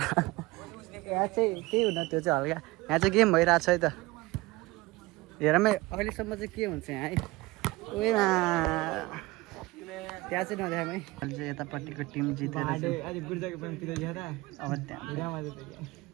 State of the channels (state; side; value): quieter; left; 21.0 dB